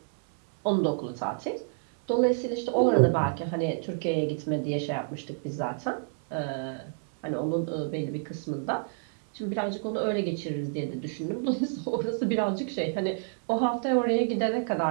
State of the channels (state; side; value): silent; left; 59 dB below the other